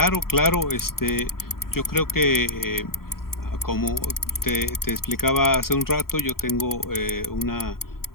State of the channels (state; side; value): late; right; 0.93 ms